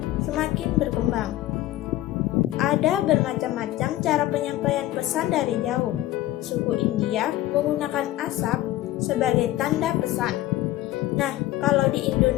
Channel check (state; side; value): quieter; right; 15.2 dB